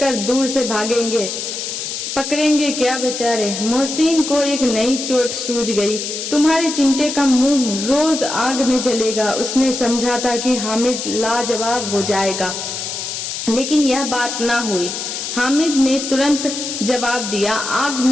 दूर से भागेंगे। पकड़ेंगे क्या बेचारे? मोहसिन को एक नई चोट सूझ गई। तुम्हारे चिमटे का मुंह रोज आग में जलेगा। उसने समझा था कि हामिद लाजवाब हो जाएगा, लेकिन यह बात ना हुई। हामिद ने तुरंत जवाब दिया, आग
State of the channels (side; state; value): left; noise; hiss, 5 dB below the sound